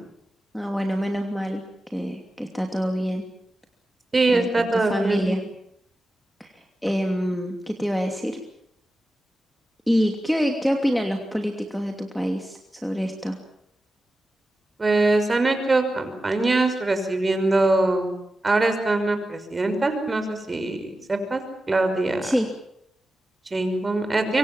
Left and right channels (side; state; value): both; normal; correlation 0.92